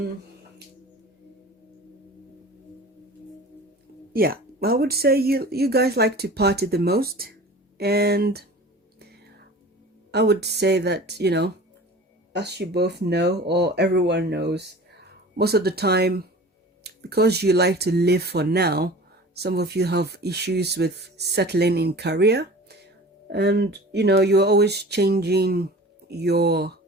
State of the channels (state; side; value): normal; both; correlation 0.40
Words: yeah, I would say you guys like to party the most. And I would say that, you know, as you both know, or everyone knows, most of the time, because you like to live for now, some of you have issues with settling in career, and you know, you're always changing your